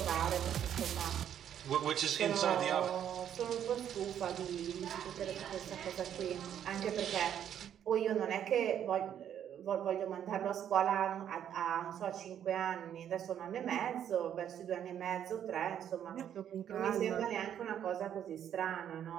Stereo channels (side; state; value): left; quieter; 9.7 dB